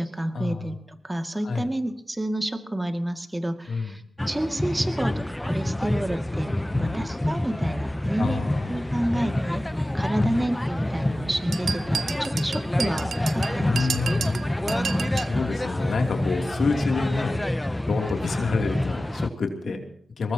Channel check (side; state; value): both; normal; correlation 0.95